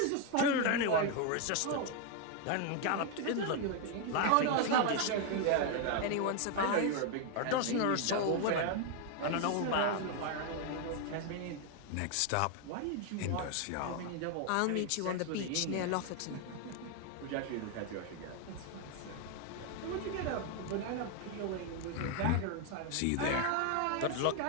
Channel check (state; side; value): different; both; correlation 0.01